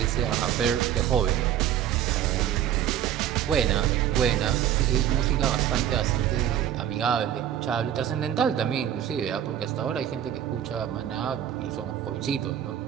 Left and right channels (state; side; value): quieter; left; 10.6 dB